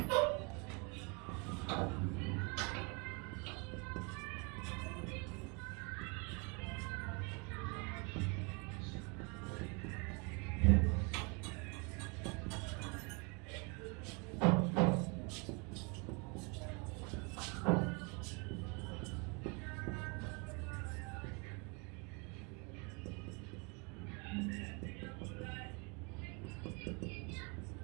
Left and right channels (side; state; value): left; quieter; 31.8 dB